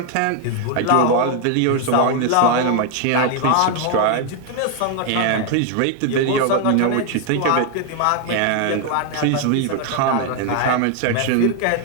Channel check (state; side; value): different; both; correlation 0.00